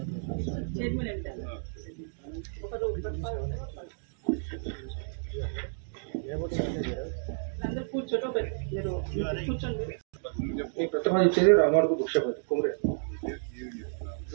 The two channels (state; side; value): silent; left; digital silence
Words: ప్రతిపాదించేది రామాడుగు బుక్షపతి కుమరే.